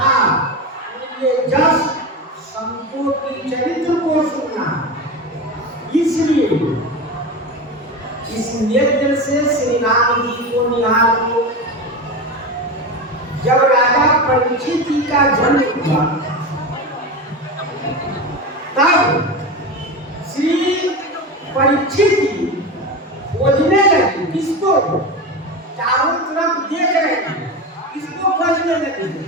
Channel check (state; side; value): normal; both; correlation 0.23